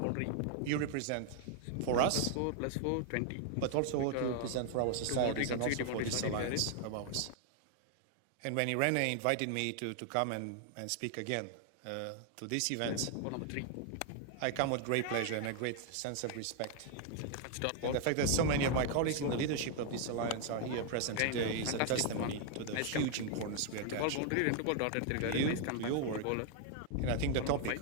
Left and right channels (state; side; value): different; both; correlation 0.00